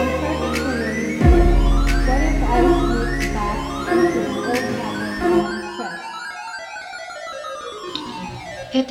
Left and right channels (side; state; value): both; identical; correlation 1.00